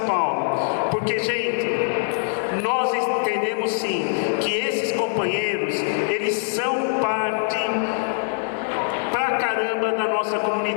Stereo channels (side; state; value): right; silent; digital silence